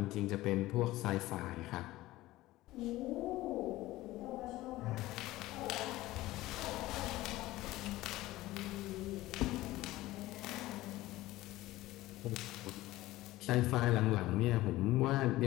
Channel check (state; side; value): quieter; right; 17.3 dB